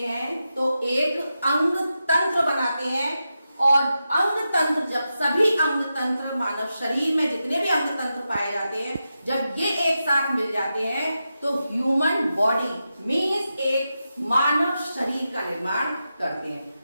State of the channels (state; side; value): inverted; both; correlation -0.89